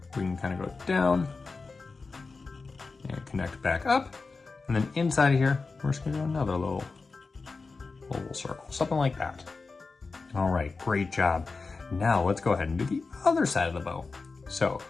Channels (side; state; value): right; quieter; 4.1 dB